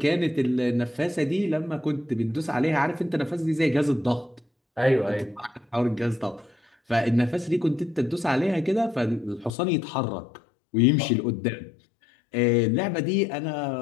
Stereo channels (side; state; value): right; drops out; at 9.5 s